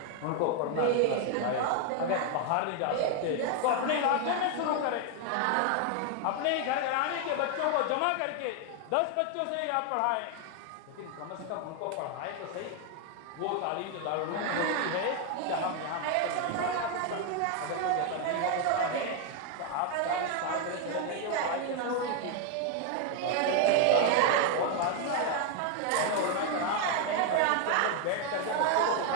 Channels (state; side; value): different; both; correlation 0.01